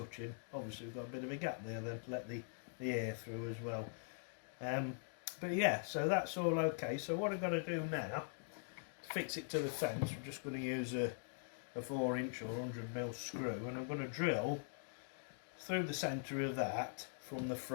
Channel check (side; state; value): right; silent; digital silence